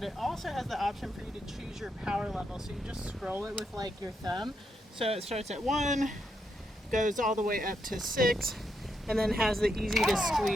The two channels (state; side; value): normal; both; correlation 0.80